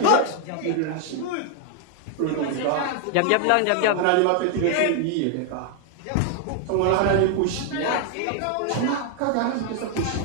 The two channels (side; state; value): both; different; correlation 0.00